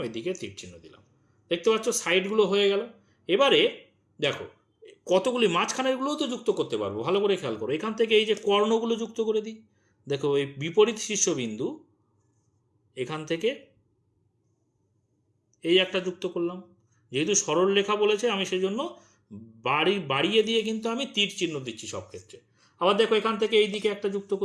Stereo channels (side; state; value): both; identical; correlation 1.00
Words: এদিকে তীর চিহ্ন দিলাম। দেখতে পাচ্ছ সাইডগুলো হয়ে গেল। এবারে দেখো কতগুলি মাঝখানেরগুলোও তো যুক্ত করতে পারবো। ভালো করে খেয়াল করো, এখান থেকে এই যে কর্ণগুলো যুক্ত করে দিই। দেখো এই বিপরীত শীর্ষবিন্দু, এখান থেকে এই একটা যুক্ত করলাম, যেহেতু সরল রেখা বলেছে আমি সেই জন্য বাড়িয়ে দিয়ে কিন্তু আমি তীর চিহ্ন দিচ্ছি সব ক্ষেত্রে। আবার দেখো এখান থেকে এই দিকে একটা যুক্ত